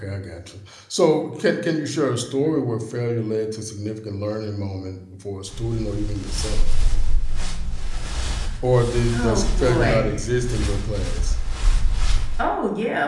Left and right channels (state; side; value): identical; both; correlation 1.00